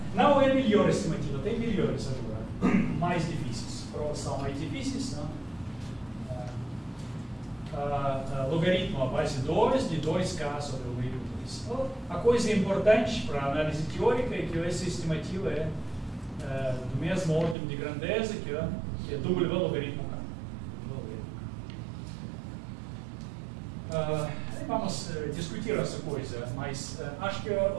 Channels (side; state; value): left; drops out; at 17.6 s